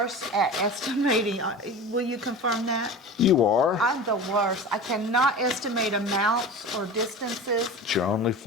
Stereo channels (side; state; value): both; normal; correlation 0.33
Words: at estimating. Will you confirm that? You are. I'm the worst. I cannot estimate amounts or distances. It's your only